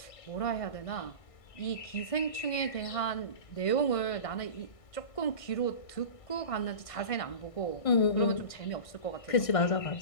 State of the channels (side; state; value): right; late; 1.6 ms